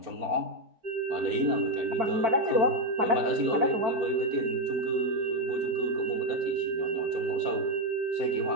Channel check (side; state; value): left; late; 4.4 ms